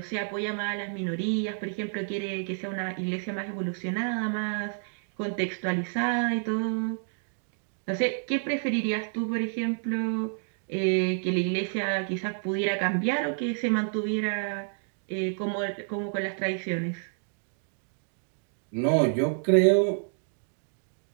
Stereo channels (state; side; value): silent; left; digital silence